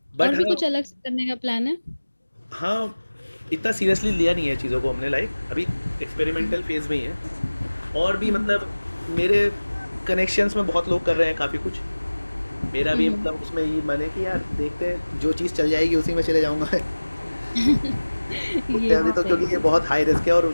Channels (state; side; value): inverted; both; correlation -1.00